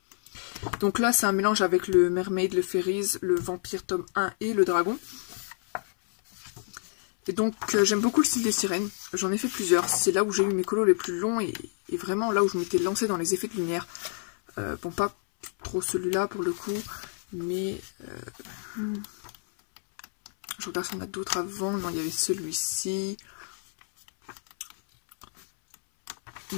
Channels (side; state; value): right; silent; 59 dB below the other